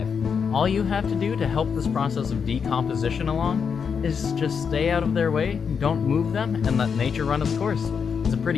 All you have to do to help this process of decomposition along is just stay out of their way, don't move them, and let nature run its course. It's a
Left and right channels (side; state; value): right; quieter; 6.4 dB